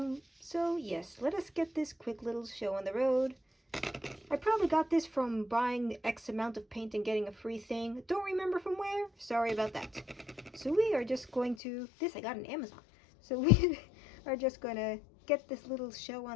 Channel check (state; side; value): drops out; right; at 11.6 s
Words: So yes, let us get this quick little show on the road. I probably got this from buying X amount of paint and getting a free thing. Don't remember from where. Sorry about that. So we are just going to, this I got on Amazon. So we are just going to get this little show